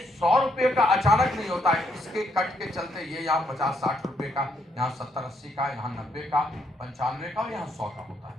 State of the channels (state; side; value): normal; both; correlation 0.74